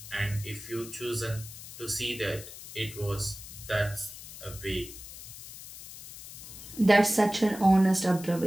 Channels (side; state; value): left; noise; hiss, 14 dB below the sound